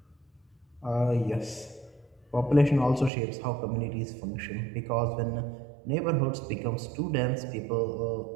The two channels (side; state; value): left; drops out; at 3.1 s